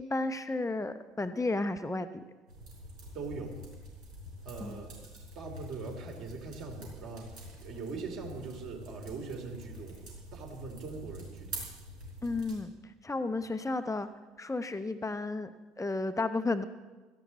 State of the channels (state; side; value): normal; both; correlation 0.75